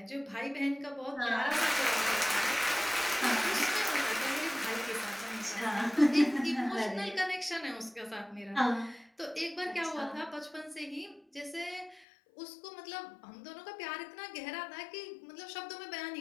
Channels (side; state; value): right; drops out; at 12.1 s